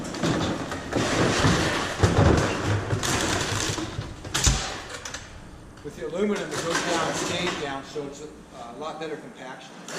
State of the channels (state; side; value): identical; both; correlation 1.00